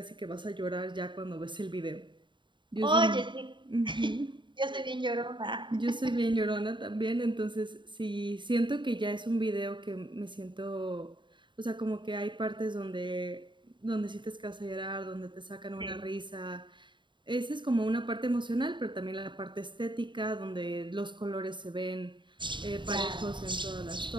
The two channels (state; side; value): late; left; 0.23 ms